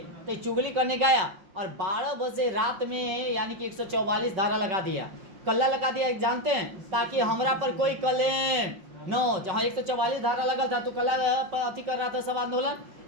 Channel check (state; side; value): late; left; 5.3 ms